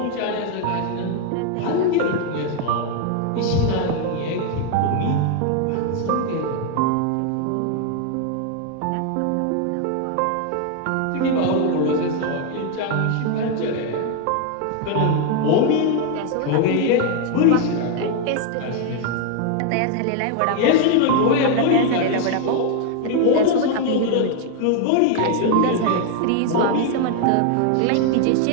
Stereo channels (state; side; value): different; both; correlation 0.00